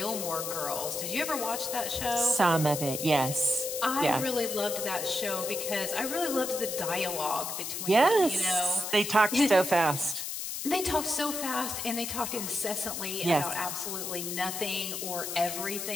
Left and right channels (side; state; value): left; noise; hiss, 5 dB below the sound